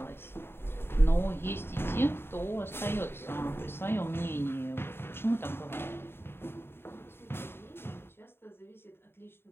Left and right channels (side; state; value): right; late; 0.11 ms